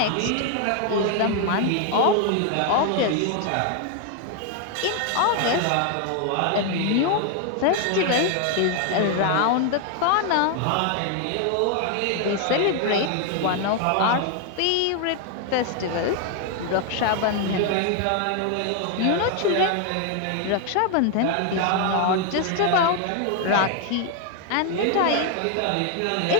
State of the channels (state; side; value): different; both; correlation 0.00